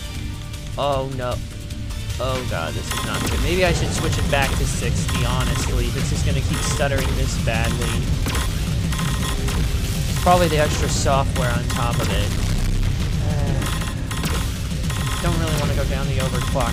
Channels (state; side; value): identical; both; correlation 1.00